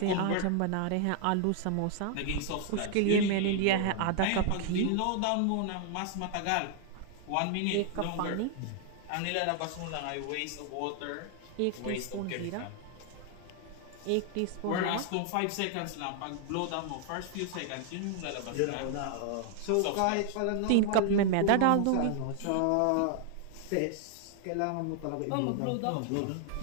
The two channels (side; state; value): both; different; correlation 0.00